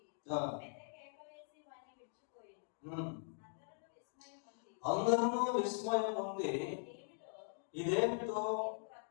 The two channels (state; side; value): silent; right; digital silence